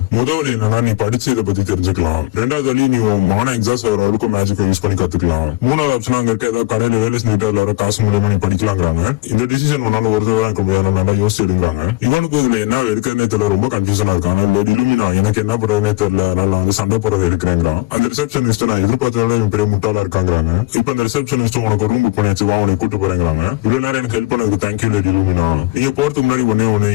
முதல் என்னன்னா நீ படிச்சு இதை பத்தி தெரிஞ்சுக்கலாம். ரெண்டாவது வழி நீ மான எக்ஸாஸ்ட் வர வரைக்கும் மேஜிக்கை யூஸ் பண்ணி கத்துக்கலாம். மூணாவது ஆப்ஷன் அங்க இருக்க ஏதாவது கடையில வேலை செஞ்சுட்டு அதுல வர காசு மூலமா நீ படிக்கலாங்கிறாங்க. இந்த டிசிஷன் உன்னால ஒரு தடவை இருக்க முடியாது, நல்லா யோசிச்சு எடுங்கிறாங்க. இவனுக்கு இதுல என்ன எடுக்கிறதே தெரியல, ரொம்ப கன்ஃபியூஷனா இருக்கான். இலுமினா எனக்கு என்ன பண்றதுனே தெரியல, அதனால வந்து சண்டை போறது எடுக்கிறேங்கிறான். அந்த ரிசப்ஷனிஸ்ட் நான் எதிர்பார்த்ததோட பெரிய முட்டாளா இருக்காங்கிறாங்க. இப்ப இந்த ரிசப்ஷனிஸ்ட் உனக்கு ரூம் புக் பண்ணியாச்சு, வா உனக்கு கூட்டு போறேங்கிறாங்க. இவ்வளவு நேரம் எனக்கு ஹெல்ப் பண்ணதுக்கு தேங்க்யூ லேடி இலுமினா. நீங்க போறதுக்கு முன்னாடி ஒண்ணு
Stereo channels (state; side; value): quieter; right; 19.8 dB